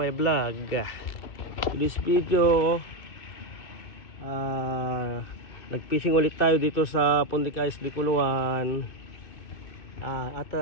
vlog. To this video, nagfishing ulit tayo dito sa Puntica Isli Guluan. At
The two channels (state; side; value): late; right; 2.6 ms